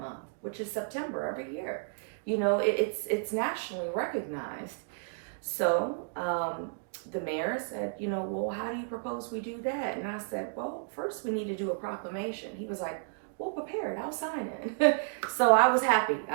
which is September every year? It's nationally recognized. So the mayor said, well, how do you propose we do that? And I said, well, first we need to do a proclamation. He was like, well, prepared, I'll sign it. So I was happy.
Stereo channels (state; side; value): silent; left; digital silence